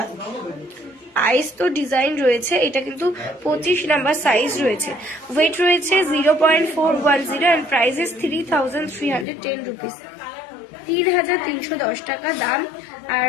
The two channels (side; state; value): right; drops out; at 9.2 s